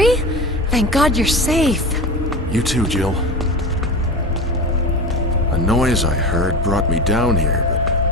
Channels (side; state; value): both; normal; correlation 0.28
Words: Thank God you're safe. You too, Jill. A noise I heard brought me down here, but